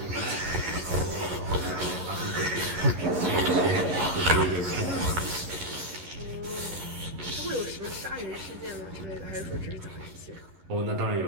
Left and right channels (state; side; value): late; left; 11 ms